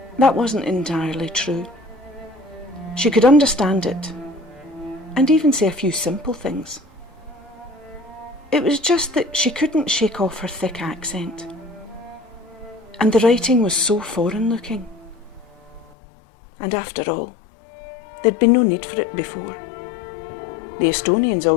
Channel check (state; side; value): drops out; right; at 15.9 s